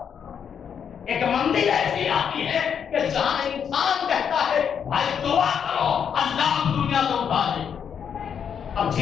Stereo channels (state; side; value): quieter; right; 7.7 dB